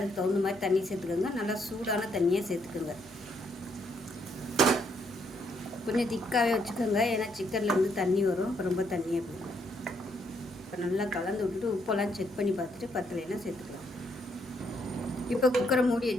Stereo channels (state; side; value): normal; both; correlation 0.73